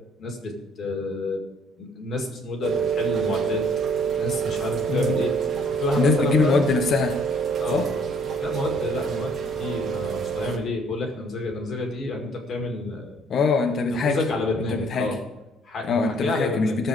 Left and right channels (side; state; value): both; normal; correlation 0.61